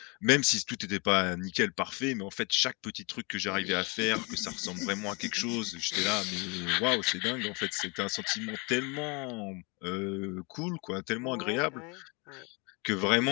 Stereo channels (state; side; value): quieter; right; 30.1 dB